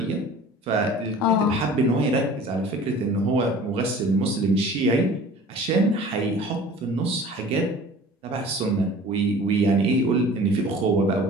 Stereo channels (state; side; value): normal; both; correlation 0.44